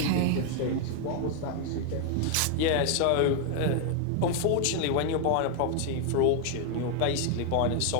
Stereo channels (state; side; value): different; both; correlation 0.00